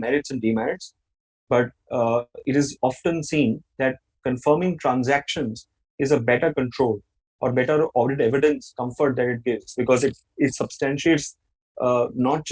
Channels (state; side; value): identical; both; correlation 1.00